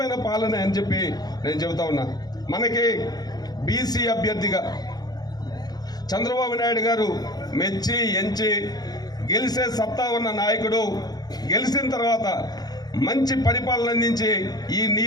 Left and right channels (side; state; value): right; late; 0.19 ms